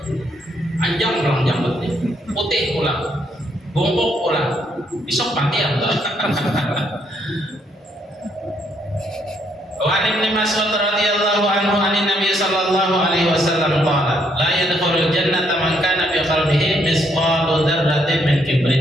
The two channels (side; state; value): both; normal; correlation 0.72